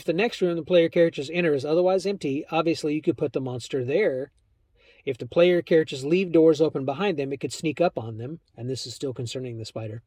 the next room the player characters enter is otherwise empty, obviously you could put the monster there. If the player characters leave doors open behind them, it could sneak up on them, and this is still concerning the spider.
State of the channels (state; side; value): identical; both; correlation 1.00